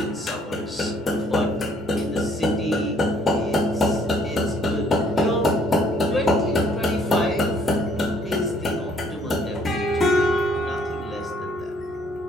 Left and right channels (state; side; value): normal; both; correlation 0.63